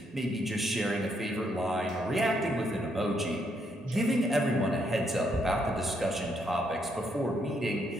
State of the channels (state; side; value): normal; both; correlation 0.75